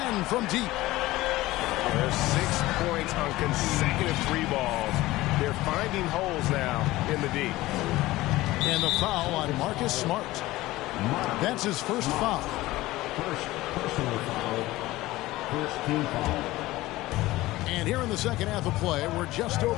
from deep. There's 6 points on consecutive 3 balls. They're finding holes now in the D. And the foul on Marcus Smart. That's his first foul. First personal foul. First team foul. And here in the second half of play, we're just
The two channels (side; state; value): right; quieter; 17.9 dB